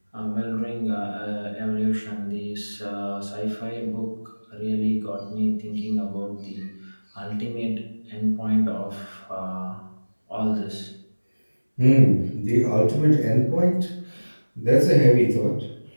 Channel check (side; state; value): both; inverted; correlation -1.00